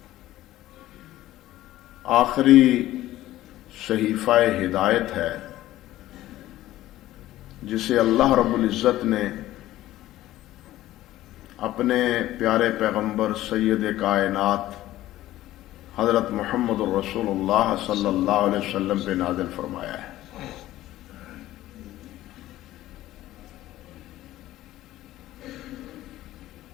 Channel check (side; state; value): right; quieter; 15.0 dB